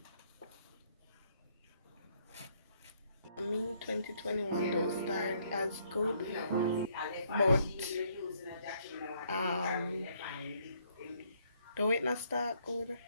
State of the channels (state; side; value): inverted; both; correlation -0.68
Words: Me 2021 don't start as good, but um, the way not start good,